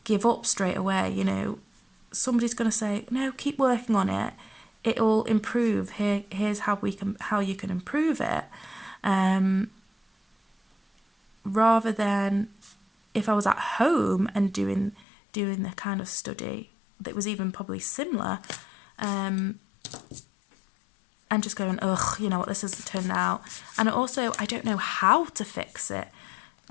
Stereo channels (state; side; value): drops out; right; at 15.0 s